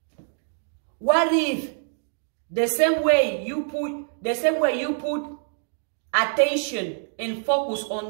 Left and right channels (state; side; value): silent; left; 62 dB below the other